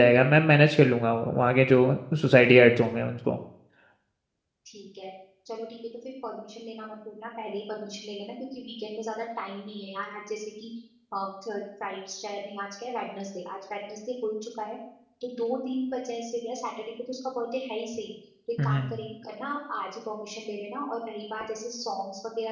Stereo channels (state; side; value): identical; both; correlation 1.00